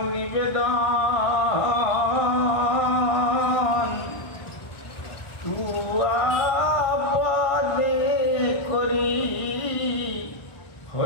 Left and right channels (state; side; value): late; right; 1.5 ms